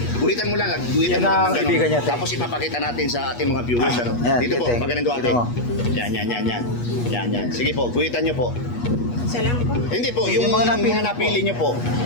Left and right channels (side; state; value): right; late; 8.3 ms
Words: Guhitan mo lang, guhitan Yan mo lang ang kaibigan niya, ate. Tapos ipapakita natin sa ating mga viewers, Yan, Dito po, ate. magaling ate. Dito mo. Yan. Sige po, guhitan niyo po. Salam po. Hindi po, Yung yung mga mga napili napili niyo po.